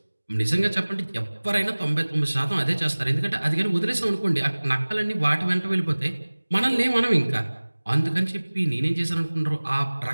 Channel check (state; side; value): inverted; both; correlation -1.00